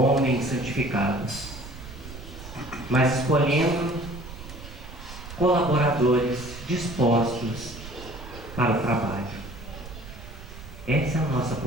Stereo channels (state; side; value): noise; right; rumble, 13 dB below the sound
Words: santificados, mas escolhendo colaboradores dispostos para o trabalho. Essa é a nossa